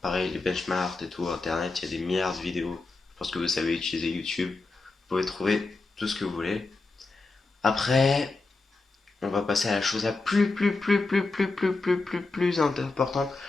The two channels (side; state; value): right; quieter; 3.6 dB